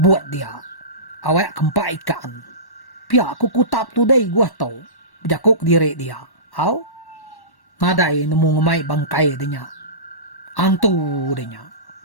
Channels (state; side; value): late; right; 1.1 ms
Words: buat dia. Awak kempak ikan. Pia aku kutap tu dai gua tau. Berjakuk diri dia. Au? Nadai nemu ngemai bangkai dia. Antu dia.